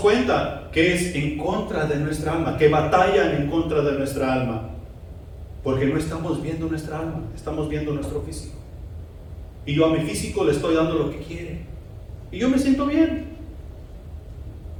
que es en contra de nuestra alma, que batallan en contra de nuestra alma, porque no estamos viendo nuestra alma, estamos viendo nuestro físico. Y yo a mi físico le estoy dando lo que quiere, y yo me siento bien.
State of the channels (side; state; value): both; identical; correlation 1.00